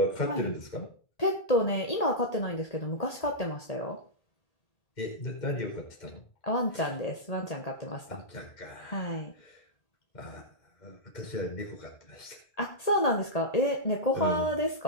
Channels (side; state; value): right; late; 1.8 ms